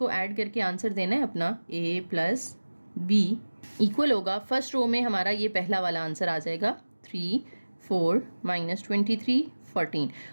ऐड करके आंसर देना है अपना A + B इक्वल होगा, फर्स्ट रो में हमारा ये पहला वाला आंसर आ जाएगा 3 4 -23 14,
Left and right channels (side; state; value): both; inverted; correlation -1.00